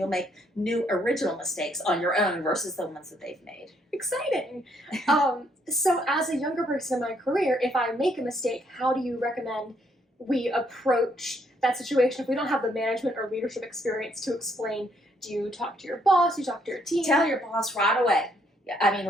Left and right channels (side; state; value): both; normal; correlation 0.70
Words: make new original mistakes on your own versus the ones that they've made. Exciting. So as a younger person in my career, if I make a mistake, how do you recommend we approach that situation if we don't have the management or leadership experience to explain? Do you talk to your boss? Do you talk to your team? Tell your boss right away. I mean,